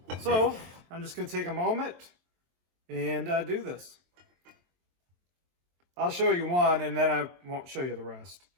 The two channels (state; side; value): late; left; 23 ms